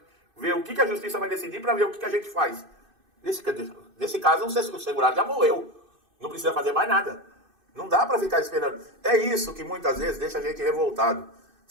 ver o que a justiça vai decidir para ver o que a gente faz. Nesse caso, o segurado já morreu. Não precisa fazer mais nada. Não dá para ficar esperando. É isso que muitas vezes deixa a gente revoltado,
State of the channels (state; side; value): late; left; 2.6 ms